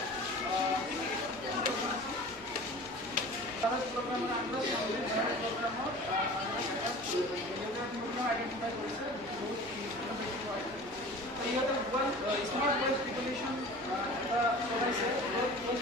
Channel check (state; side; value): normal; both; correlation 0.40